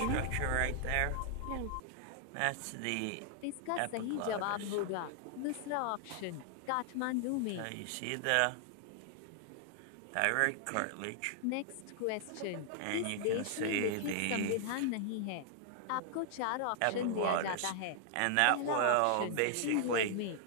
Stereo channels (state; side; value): different; both; correlation 0.00